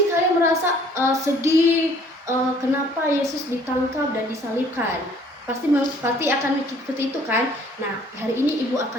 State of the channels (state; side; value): normal; both; correlation 0.57